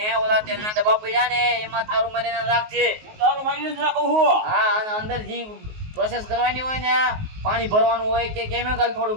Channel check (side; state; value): left; late; 19 ms